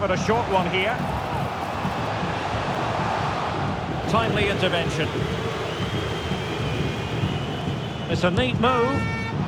a short one here. Timely intervention. It's a neat move.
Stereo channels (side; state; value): both; identical; correlation 1.00